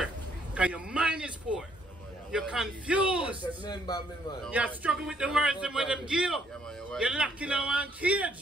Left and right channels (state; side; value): normal; both; correlation 0.68